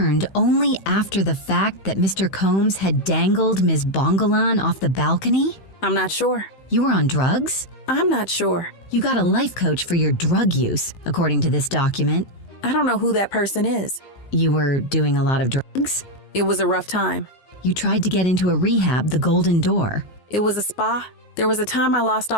only after the fact that Mr. Combs had dangled Ms. Bongolan off the balcony? I'm not sure. You were on drugs? I'm not sure. You got a life coach for your drug use, according to this document. I don't know who that person is. You were doing a lot of drugs? It was a rough time. You tried to get into a rehab, the Golden Door. It was a spa. There was a time I lost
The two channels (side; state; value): right; late; 15 ms